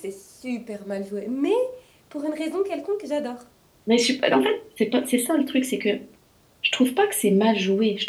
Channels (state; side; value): identical; both; correlation 1.00